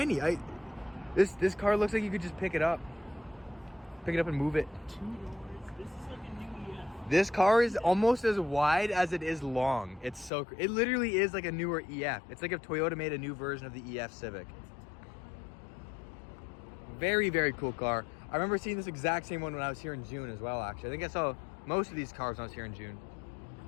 This car looks like you could just pick it up. Pick it up and move it. $2. This is like a new EF. This car is almost as wide as it is long. It literally is like a newer EF. It's like if Toyota made a new version of the EF Civic. Very, very cool car. I remember seeing this exact same one when I was here in June as well, actually. I think I saw most of these cars when I was here in June.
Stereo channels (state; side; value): drops out; right; at 10.3 s